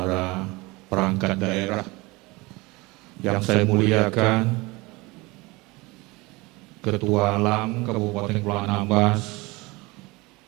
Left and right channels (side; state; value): left; quieter; 23.5 dB